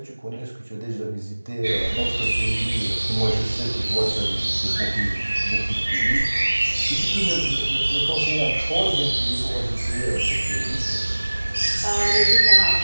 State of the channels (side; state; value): both; inverted; correlation -1.00